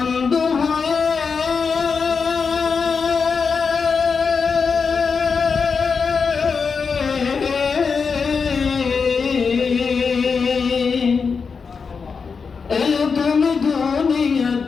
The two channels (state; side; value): quieter; right; 5.4 dB